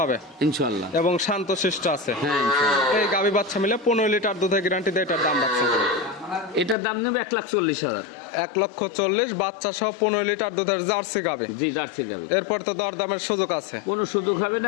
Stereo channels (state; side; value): drops out; right; at 6.8 s